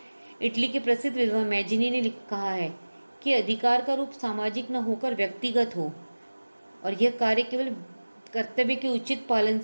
इटली के प्रसिद्ध विद्वान मैजिनी ने कहा है कि अधिकार का रूप सामाजिक न होकर व्यक्तिगत हो और यह कार्य केवल कर्तव्य के उचित पालन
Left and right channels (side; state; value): both; inverted; correlation -1.00